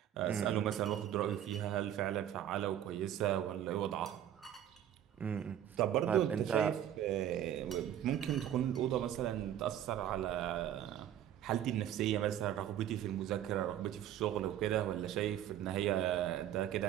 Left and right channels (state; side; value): quieter; left; 11.0 dB